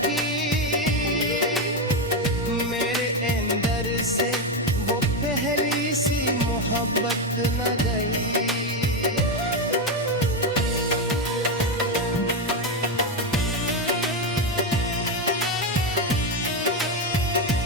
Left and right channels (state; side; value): normal; both; correlation 0.09